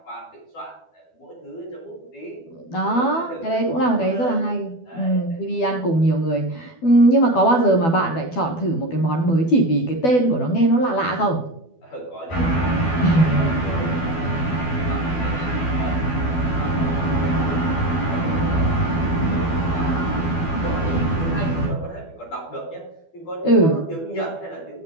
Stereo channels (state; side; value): late; right; 12 ms